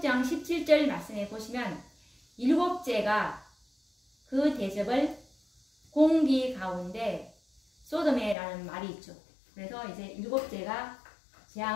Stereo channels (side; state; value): right; drops out; at 8.3 s